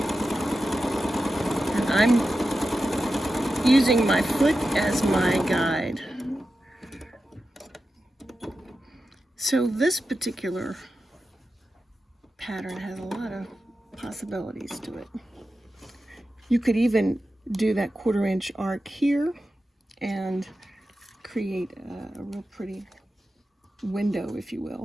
I'm using my foot as my guide. So this particular pattern has a lot of possibilities to it. You could even do that 1/4 inch arc here and create a real pretty window, if you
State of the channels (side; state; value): both; normal; correlation 0.92